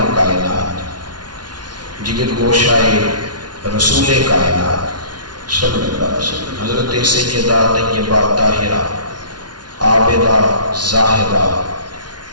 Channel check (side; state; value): left; late; 0.70 ms